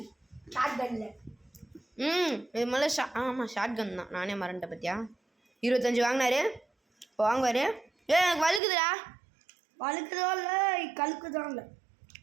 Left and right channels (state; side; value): drops out; left; at 8.6 s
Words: ஷார்ட் கன்ல? இது முதல்ல ஆமாம் ஷார்ட் கன் தான். நானே மறந்துட்டேன் பத்தியா. 25 வாங்கினாரு, இப்போ வாங்குவார். எனக்கு வலுக்குதுடா. வழுக்குதோ இல்லை கழுக்குதோ இல்லை.